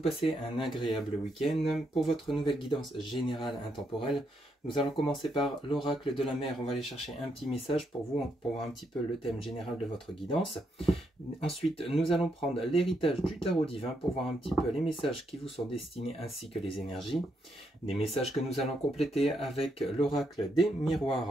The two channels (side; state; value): both; normal; correlation 0.78